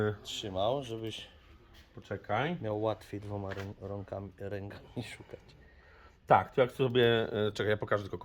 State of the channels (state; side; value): identical; both; correlation 1.00